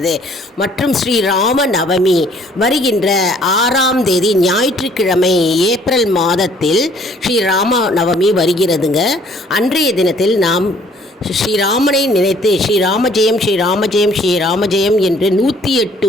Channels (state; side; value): normal; both; correlation 0.59